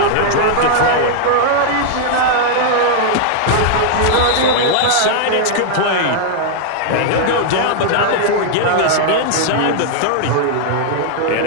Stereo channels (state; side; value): different; both; correlation -0.01